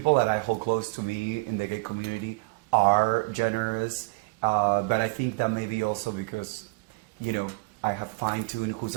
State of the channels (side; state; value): left; quieter; 27.5 dB